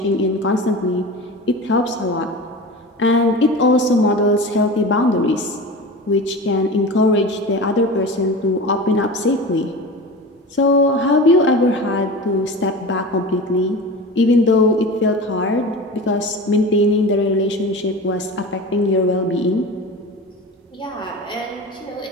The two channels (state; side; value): normal; both; correlation 0.31